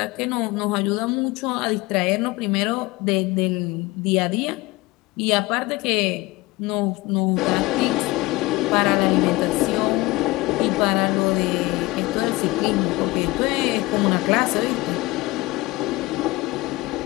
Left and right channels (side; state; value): right; quieter; 21.2 dB